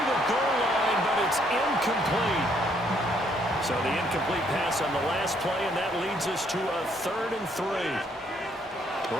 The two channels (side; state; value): both; normal; correlation 0.68